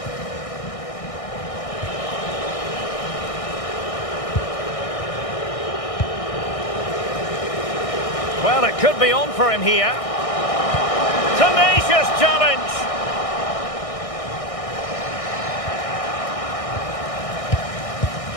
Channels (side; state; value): right; late; 1.6 ms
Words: Well, it could be on for him here. Tenacious challenge.